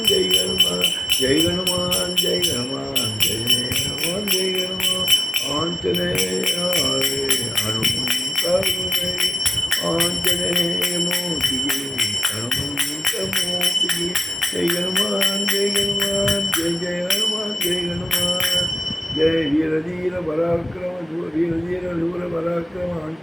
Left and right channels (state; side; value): normal; both; correlation 0.95